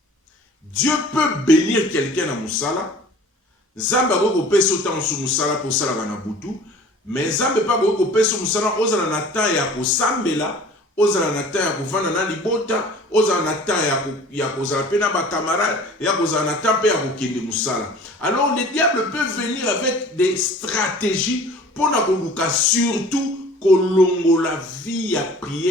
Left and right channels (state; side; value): normal; both; correlation 0.46